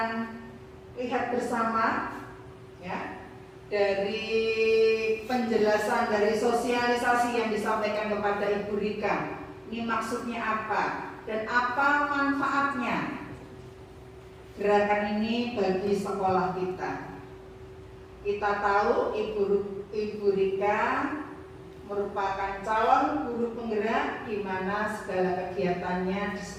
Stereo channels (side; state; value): both; identical; correlation 1.00